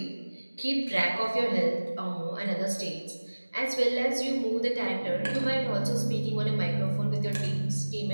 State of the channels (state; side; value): inverted; both; correlation -1.00